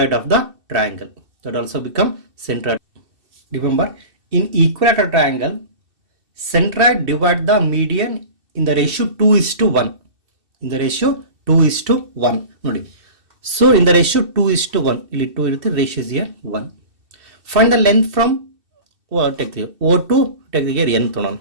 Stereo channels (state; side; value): late; left; 2.7 ms